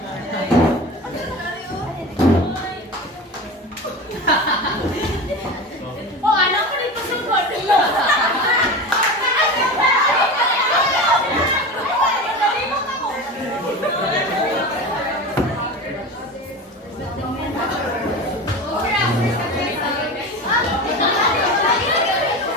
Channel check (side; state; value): both; normal; correlation 0.29